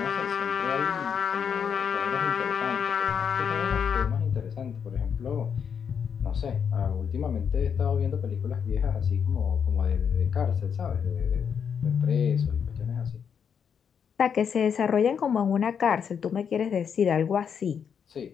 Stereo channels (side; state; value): right; quieter; 7.3 dB